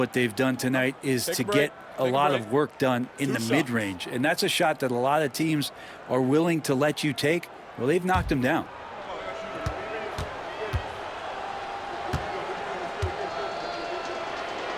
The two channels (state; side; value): identical; both; correlation 1.00